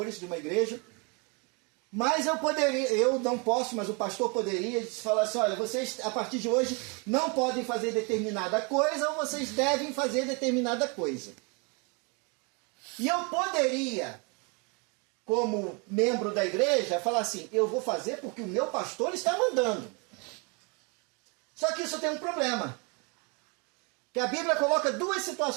de uma igreja, mas eu não posso, mas o pastor poderia falar assim, olha, vocês a partir de hoje não podem fazer determinada coisa ou vocês devem fazer determinada coisa. E eu poderia, como membro da igreja, falar assim, eu vou fazer porque o meu pastor está mandando. Só que isso tem um problema. Que a Bíblia coloca duas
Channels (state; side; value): quieter; left; 32.2 dB